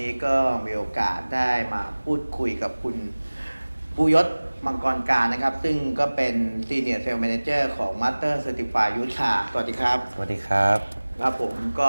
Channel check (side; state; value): both; inverted; correlation -1.00